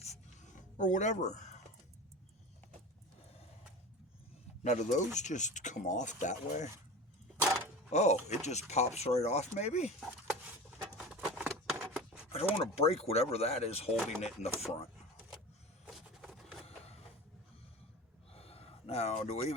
or whatever. Now, do those just come off that way? Oh, it just pops right off, maybe? I don't want to break whatever that is holding it in the front. Now, do we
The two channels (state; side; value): normal; both; correlation 0.32